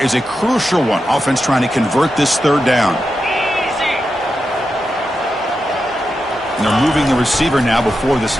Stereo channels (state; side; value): normal; both; correlation 0.88